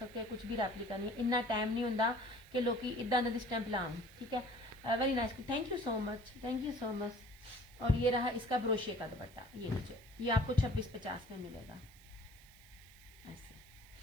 हैं, कुछ भी रेप्लिका नहीं है। इतना टाइम नहीं होता कि लोग इदा का स्टैंप लाऊं, ठीक है। Very nice, thank you so much, thank you so much. और ये रहा इसका ब्रोशे का दुपट्टा, ये नीचे, ये आपको 2650 में मिलेगा ऐसे।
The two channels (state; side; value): noise; right; hiss, 25 dB below the sound